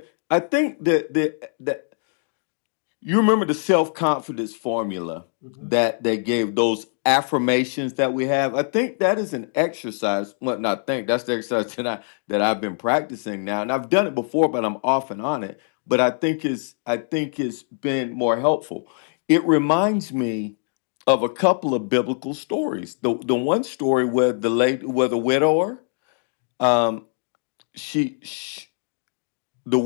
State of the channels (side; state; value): right; silent; 63 dB below the other